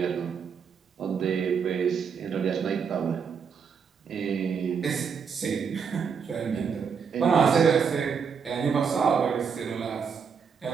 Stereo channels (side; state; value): left; quieter; 6.4 dB